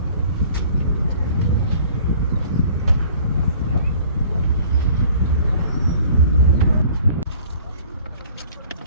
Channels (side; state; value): both; inverted; correlation -0.52